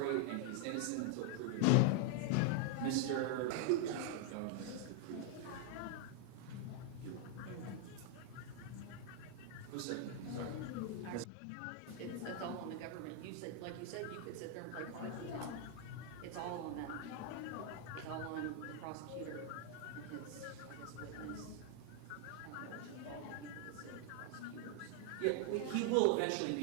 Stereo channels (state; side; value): different; both; correlation 0.00